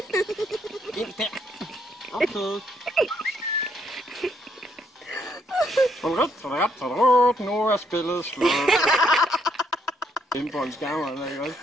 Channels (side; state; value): both; normal; correlation 0.72